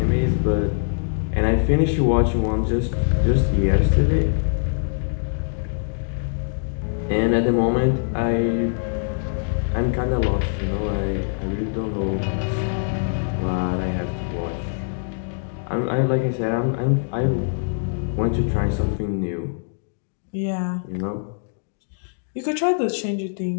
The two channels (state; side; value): silent; right; digital silence